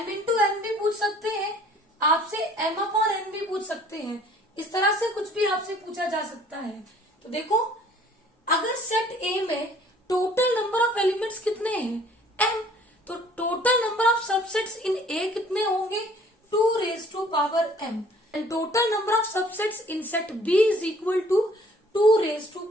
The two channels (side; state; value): both; normal; correlation 0.55